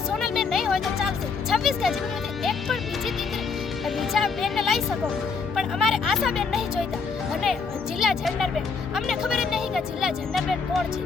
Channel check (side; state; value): right; quieter; 5.0 dB